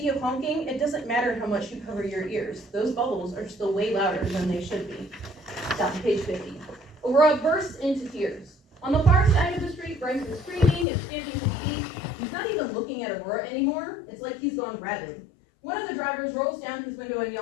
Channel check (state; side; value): drops out; right; at 10.9 s